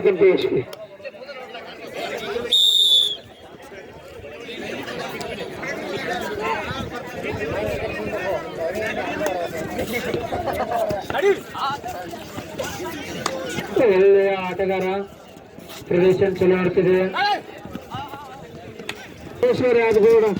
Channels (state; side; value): identical; both; correlation 1.00